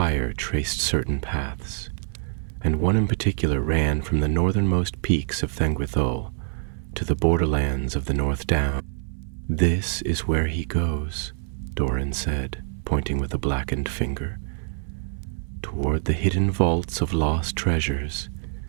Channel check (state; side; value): silent; left; 59 dB below the other